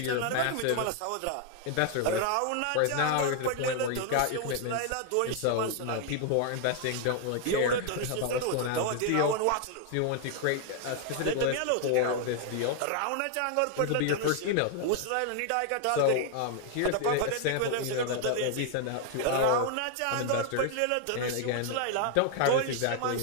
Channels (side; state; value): both; different; correlation 0.00